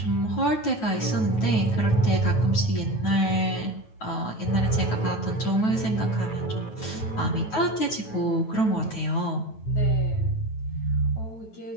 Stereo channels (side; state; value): right; late; 9.2 ms